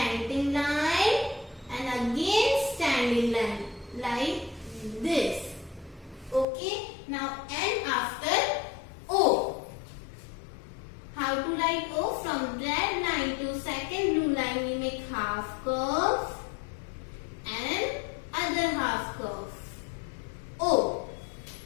line, and again standing line like this. Okay, now N after O. How to write O? From red line to second blue line we make half curve and other half curve. O.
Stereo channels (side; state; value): right; drops out; at 6.5 s